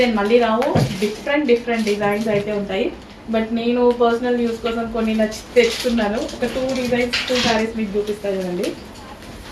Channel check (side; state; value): both; identical; correlation 1.00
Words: మళ్ళీ రావు, డిఫరెంట్ డిజైన్స్ అయితే ఉంటాయి. బట్ నేను పర్సనల్ యూస్ కోసం కొన్ని నచ్చి తెచ్చుకున్నాను. ఒక 2 శారీస్ మీకు చూపిస్తాను చూడండి.